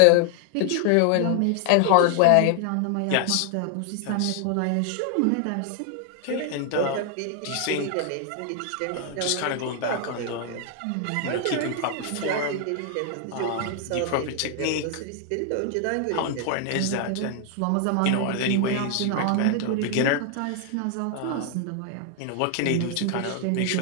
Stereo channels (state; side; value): different; both; correlation 0.00